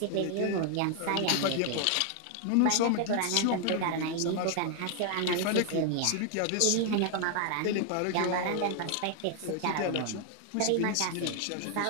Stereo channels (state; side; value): different; both; correlation 0.00